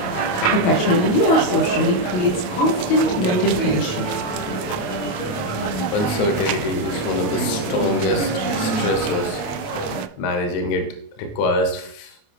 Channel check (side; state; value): right; late; 28 ms